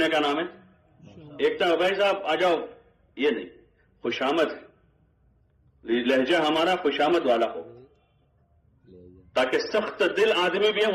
کا نام ہے؟ ایک تو بھائی صاحب آ جاؤ، یہ نہیں، خوشامد ہے، لہجہ ہمارا خوشامد والا ہو تاکہ سخت دل آدمی بھی ہے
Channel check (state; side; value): identical; both; correlation 1.00